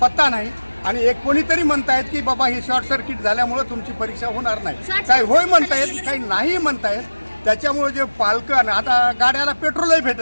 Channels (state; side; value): inverted; both; correlation -1.00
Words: पत्ता नाही। आणि एक कोणीतरी म्हणतायत की बाबा हे शॉर्ट सर्किट झाल्यामुळे तुमची परीक्षा होणार नाही, काही होय म्हणतायत काही नाही म्हणतायत। त्याच्यामुळे जे पालकं आता गाड्याला पेट्रोलही